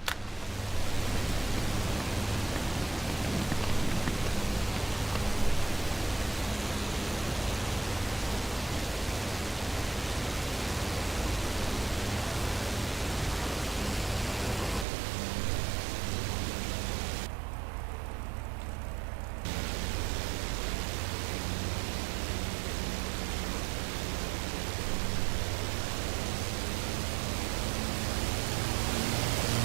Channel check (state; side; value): drops out; left; at 14.9 s